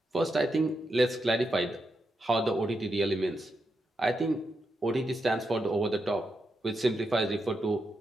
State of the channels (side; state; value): both; normal; correlation 0.85